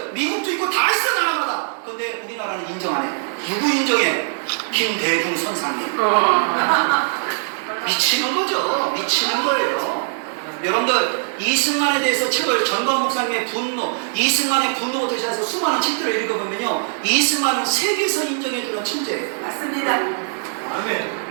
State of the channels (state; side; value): silent; left; digital silence